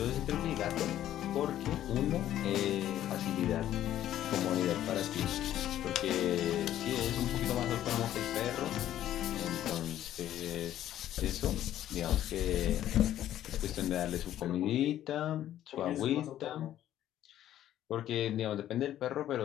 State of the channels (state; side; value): quieter; right; 12.2 dB